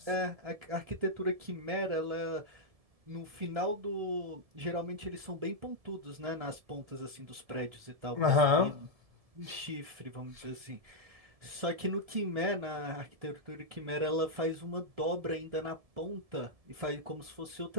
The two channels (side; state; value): left; late; 1.7 ms